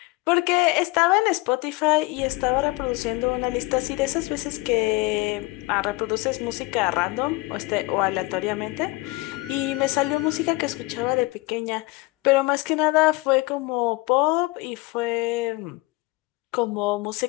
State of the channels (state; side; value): quieter; right; 23.3 dB